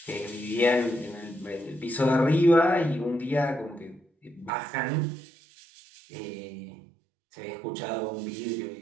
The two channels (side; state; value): left; drops out; at 4.5 s